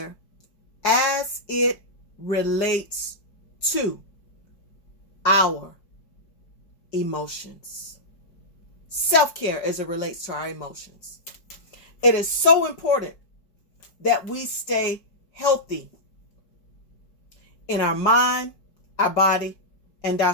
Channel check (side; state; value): right; late; 4.8 ms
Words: as it relates to our emotions. Self-care as it relates to our emotions. It is so important that we stay healthy in our mind, our body, and our